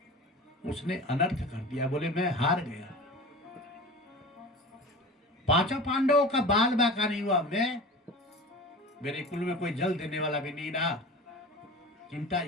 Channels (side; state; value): both; normal; correlation 0.35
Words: उसने अनर्थ कर दिया, बोले मैं हार गया। पांचों पांडवों का बाल बाका नहीं हुआ, मैं मेरे कुल में कोई जल देने वाला भी नहीं रहा। चिंता